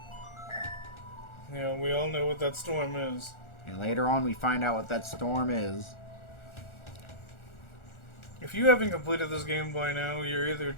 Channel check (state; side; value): late; right; 1.4 ms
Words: Yeah, we all know what that storm is. And later on, we find out what that storm is. If you haven't completed this game by now, you're either